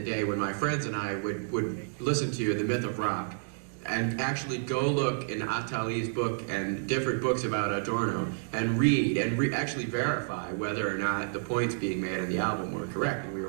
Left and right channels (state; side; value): silent; left; 58 dB below the other